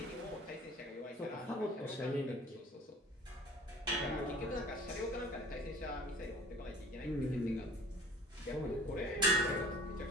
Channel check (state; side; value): normal; both; correlation 0.47